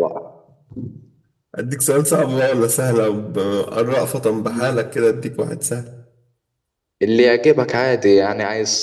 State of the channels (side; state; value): both; identical; correlation 1.00